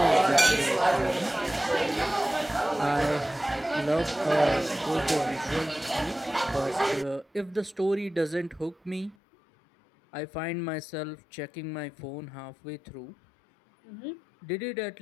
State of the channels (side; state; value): right; drops out; at 9.2 s